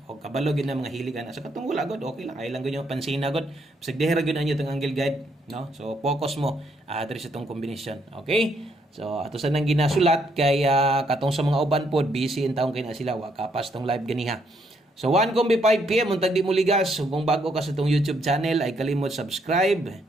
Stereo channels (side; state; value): both; normal; correlation 0.73